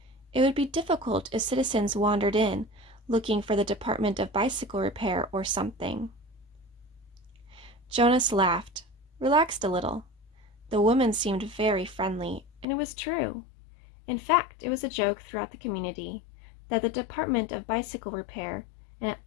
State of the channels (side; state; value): right; drops out; at 12.7 s